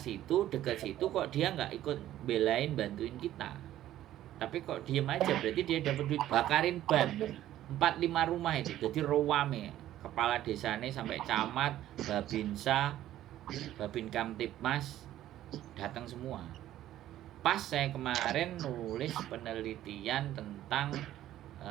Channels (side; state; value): left; quieter; 13.1 dB